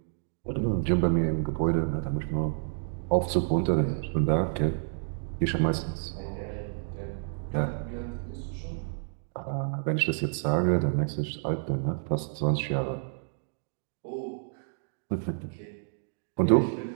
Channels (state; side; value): silent; left; digital silence